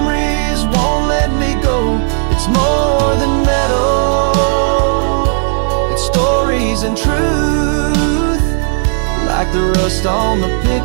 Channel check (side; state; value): left; silent; digital silence